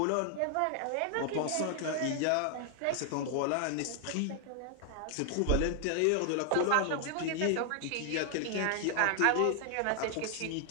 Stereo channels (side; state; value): both; different; correlation 0.00